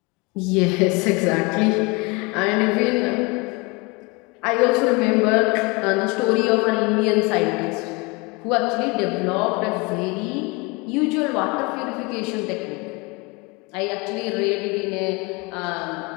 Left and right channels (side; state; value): right; quieter; 27.0 dB